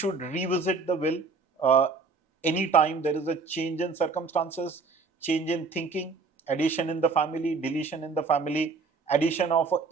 revisit the will anytime there is a change in circumstances, change in thinking, addition in the family, deletion in the family, addition of an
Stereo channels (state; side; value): quieter; left; 4.4 dB